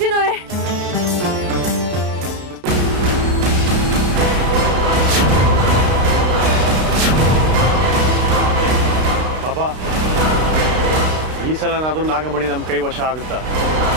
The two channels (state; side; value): late; left; 32 ms